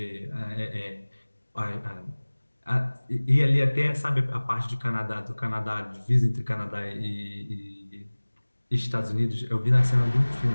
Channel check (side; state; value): both; inverted; correlation -1.00